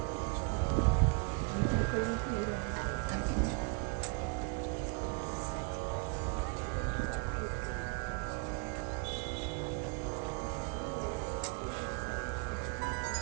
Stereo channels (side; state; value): left; quieter; 35.7 dB